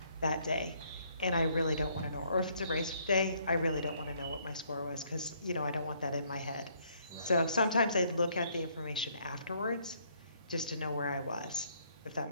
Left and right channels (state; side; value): inverted; both; correlation -0.67